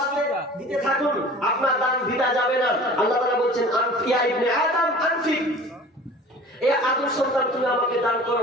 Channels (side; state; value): both; normal; correlation 0.43